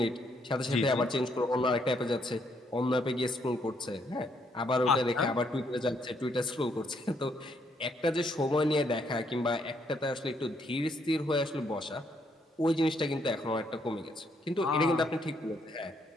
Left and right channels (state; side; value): normal; both; correlation 0.72